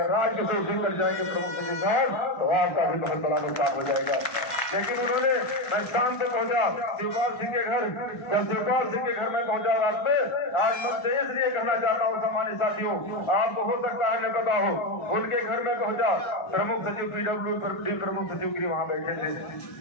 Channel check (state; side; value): late; right; 1.4 ms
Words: राजकिशोर सिंह कर जाएंगे प्रमुख सचिव साहब तो आपका भी बहुत बड़ा नुकसान हो जाएगा। लेकिन उन्होंने मैं शाम पे पहुंचा शिवपाल सिंह के घर, जब शिवपाल सिंह के घर में पहुंचा रात में, आज मन से इसलिए कहना चाहता हूँ सम्मानित साथियों, आपको हो सकता है न पता हो, उनके घर में पहुंचा प्रमुख सचिव पीडब्ल्यूडी प्रमुख सचिव गिरी वहाँ बैठे थे,